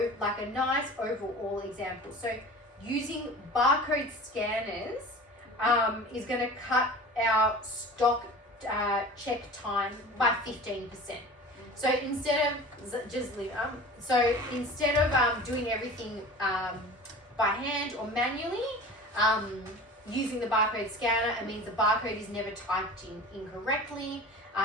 nice overall example. So using barcode scanners is going to cut our stock check time by 15%. So instead of doing everything by hand or manually, using the barcode scanner, it means the barcode is never typed in incorrectly.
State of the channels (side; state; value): both; normal; correlation 0.38